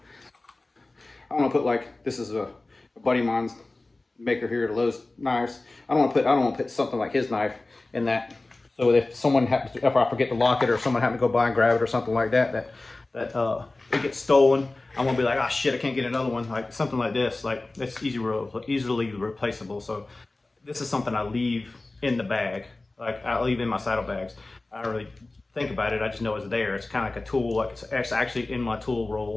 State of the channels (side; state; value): right; quieter; 3.1 dB